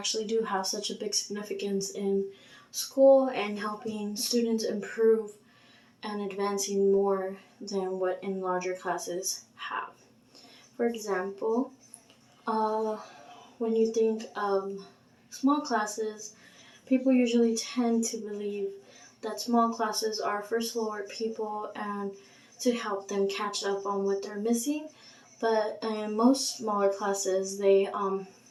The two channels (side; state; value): both; identical; correlation 1.00